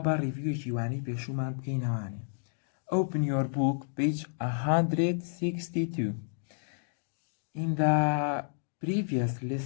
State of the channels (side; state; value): right; silent; digital silence